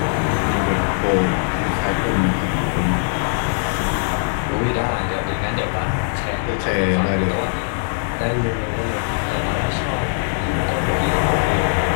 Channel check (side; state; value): right; silent; 64 dB below the other